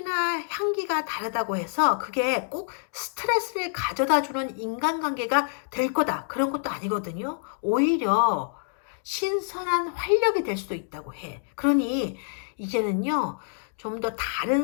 향기가 다르다고 해서 그게 꼭 스트레스를 가져다 주는 인간관계가 될 거다. 그런 것도 아니거든요. 오히려 신선한 활력이 될 수도 있다고 해. 그러니 이제는요, 좀 더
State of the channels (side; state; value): right; silent; digital silence